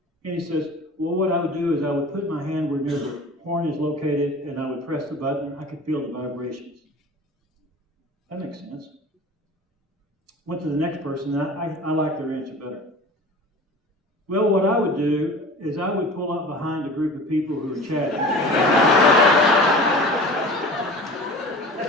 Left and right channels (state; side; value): normal; both; correlation 0.39